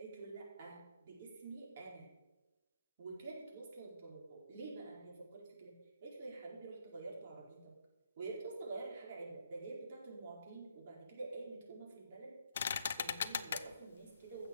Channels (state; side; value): inverted; both; correlation -0.73